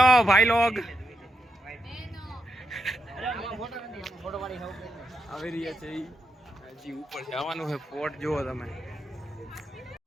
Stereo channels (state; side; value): normal; both; correlation 0.85